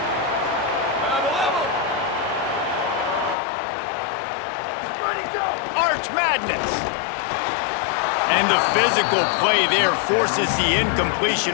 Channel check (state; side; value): drops out; right; at 3.4 s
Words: Arch Madness. And the physical play there forces the